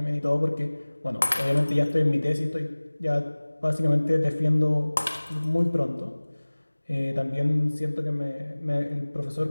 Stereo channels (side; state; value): both; inverted; correlation -1.00